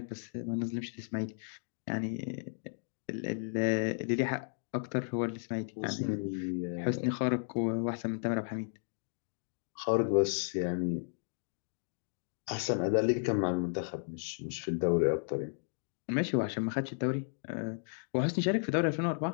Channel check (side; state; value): right; silent; digital silence